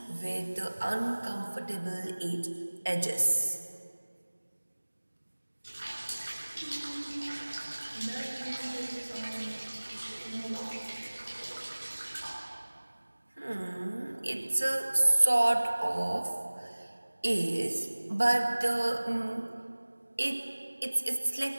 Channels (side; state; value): both; inverted; correlation -1.00